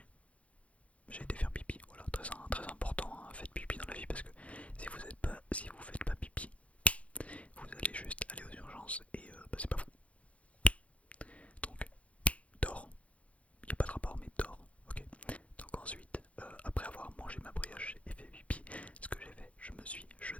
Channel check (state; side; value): late; right; 0.064 ms